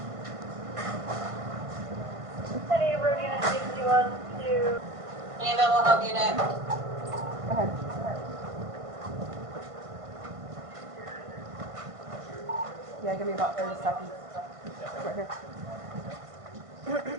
Any road unit 61 to... Any available help unit? Go ahead. Yeah, give me about 30 seconds. Right here.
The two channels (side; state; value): left; late; 1.5 ms